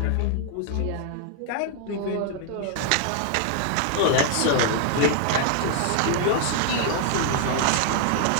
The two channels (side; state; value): both; different; correlation 0.00